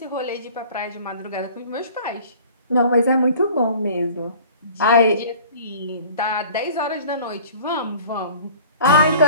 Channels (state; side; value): inverted; both; correlation -0.46